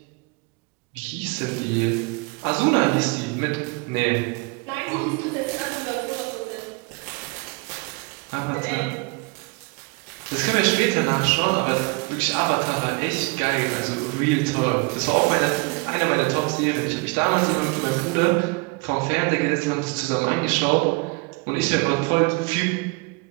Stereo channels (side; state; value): left; quieter; 28.3 dB